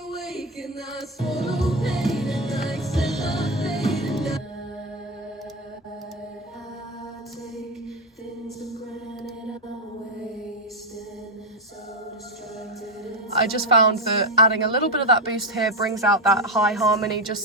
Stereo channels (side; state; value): both; normal; correlation 0.11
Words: I just found that adding a little bit of that boost here brings out that high harmony